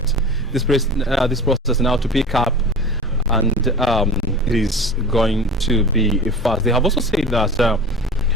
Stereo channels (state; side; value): normal; both; correlation 0.35